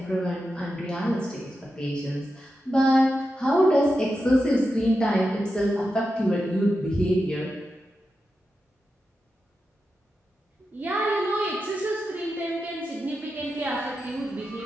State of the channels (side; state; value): both; normal; correlation 0.89